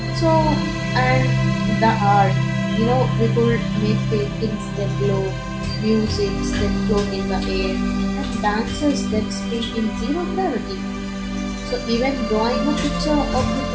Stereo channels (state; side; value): identical; both; correlation 1.00